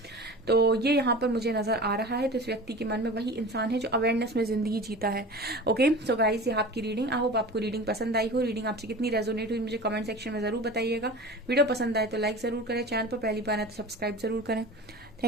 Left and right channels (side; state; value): both; normal; correlation 0.35